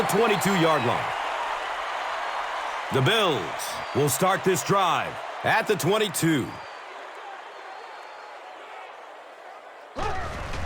22-yard line. The Bills will start this drive at the 22.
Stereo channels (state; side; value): identical; both; correlation 1.00